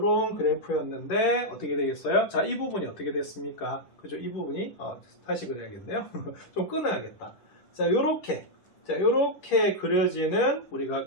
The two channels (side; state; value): right; late; 10 ms